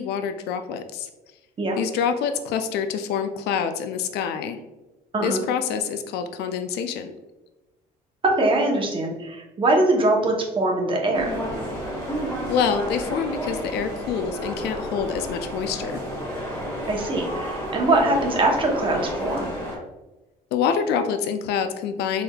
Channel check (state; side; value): normal; both; correlation 0.36